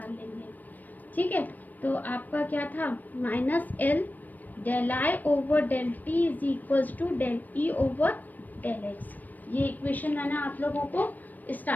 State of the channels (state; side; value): late; right; 0.085 ms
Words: लेंगे। ठीक है, तो आपका क्या था, minus L del I over del t is equals to del E over del x. ये इक्वेशन मैंने आप लोगों को